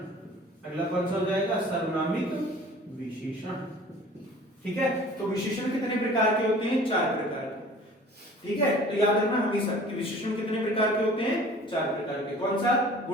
अगला कौन सा हो जाएगा? सर्वनामिक विशेषण। ठीक है, तो विशेषण कितने प्रकार के होते हैं? 4 प्रकार के। ठीक है, तो याद रखना हमेशा कि विशेषण कितने प्रकार के होते हैं? 4 प्रकार के। कौन सा?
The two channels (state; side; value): normal; both; correlation 0.47